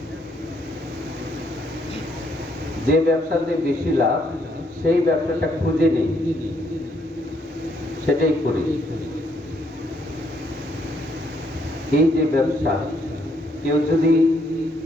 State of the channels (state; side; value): normal; both; correlation 0.71